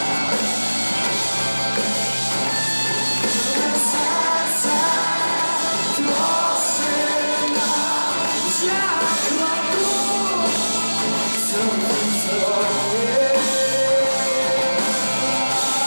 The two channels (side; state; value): both; inverted; correlation -1.00